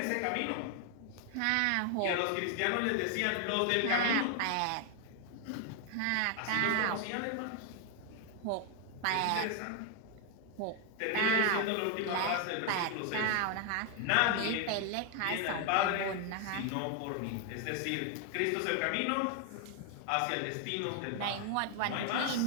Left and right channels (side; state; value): both; different; correlation 0.01